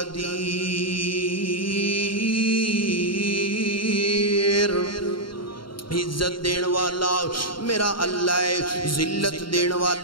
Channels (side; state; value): right; late; 0.73 ms